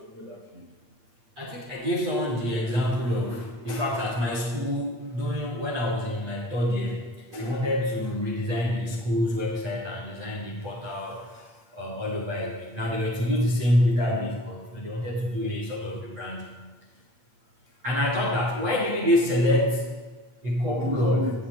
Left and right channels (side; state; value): left; late; 8.6 ms